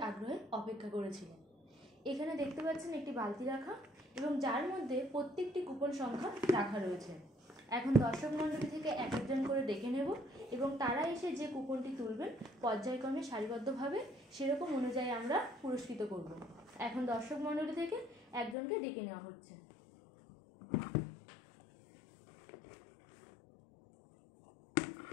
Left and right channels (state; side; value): drops out; right; at 18.6 s